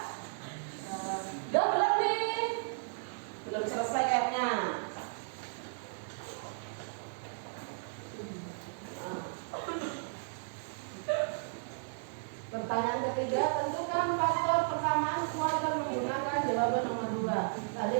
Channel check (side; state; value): left; silent; digital silence